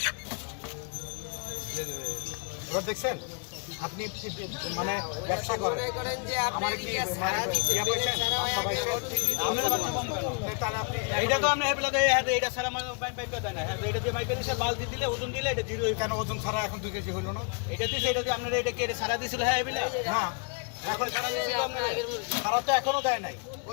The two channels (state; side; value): quieter; right; 38.0 dB